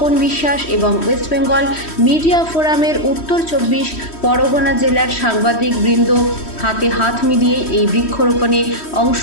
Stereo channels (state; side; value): late; right; 3.1 ms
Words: বিশ্বাস এবং ওয়েস্ট বেঙ্গল মিডিয়া ফোরামের উত্তর 24 পরগনা জেলার সাংবাদিক বৃন্দ হাতে হাত মিলিয়ে এই বৃক্ষরোপণে অংশ